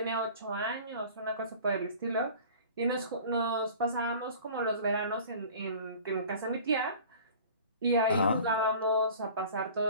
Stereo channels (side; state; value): both; inverted; correlation -0.43